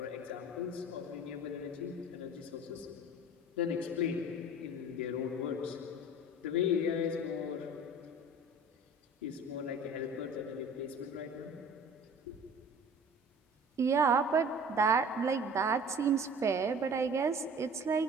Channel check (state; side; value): normal; both; correlation 0.44